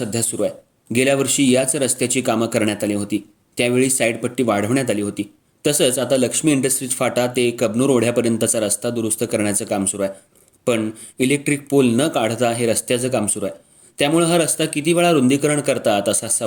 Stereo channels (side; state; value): both; identical; correlation 1.00